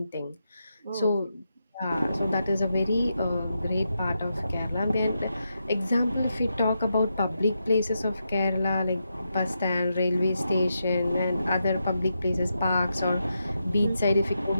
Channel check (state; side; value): inverted; both; correlation -0.85